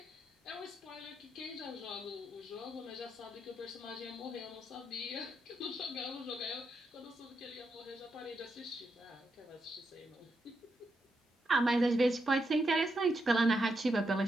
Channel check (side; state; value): both; normal; correlation 0.83